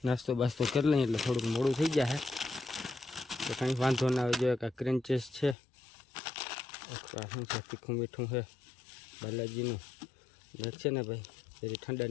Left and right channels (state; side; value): drops out; right; at 5.6 s